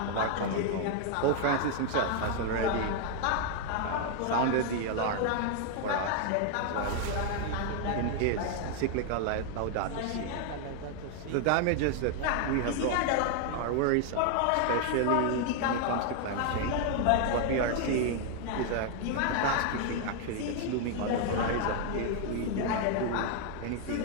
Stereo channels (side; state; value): both; different; correlation 0.00